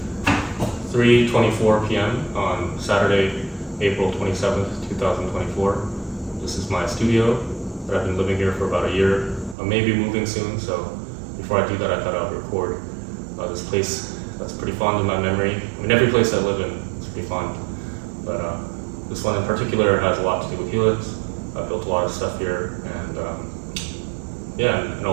3:24 p.m. on Saturday, April 27th, 2024. This is my studio that I've been living here for about a year. I may be moving soon, so before I do that, I thought I would record this place that's pretty fond in my memory. I mean, every place I live in is pretty fond, but this one in particular has a lot to do with HELIX. I built a lot of stuff here, and and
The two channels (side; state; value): left; drops out; at 9.6 s